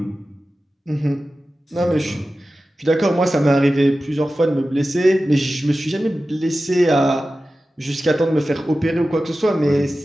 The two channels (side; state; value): both; normal; correlation 0.94